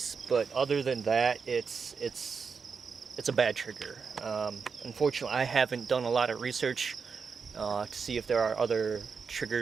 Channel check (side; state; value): left; quieter; 5.6 dB